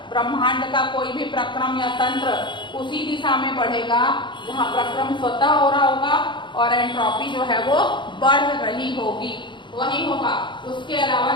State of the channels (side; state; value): right; late; 0.23 ms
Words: ब्रह्मांड का कोई भी प्रक्रम या तंत्र उसी दिशा में बढ़ेगा जहां प्रक्रम स्वतः हो रहा होगा और एंट्रोपी जो है वो बढ़ रही होगी, वही होगा, उसके अलावा